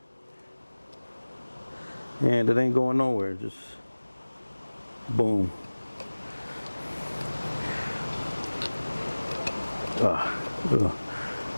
and it ain't going nowhere. Just boom.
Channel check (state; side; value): inverted; both; correlation -1.00